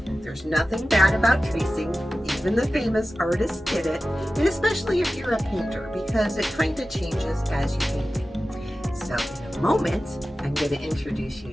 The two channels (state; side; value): normal; both; correlation 0.95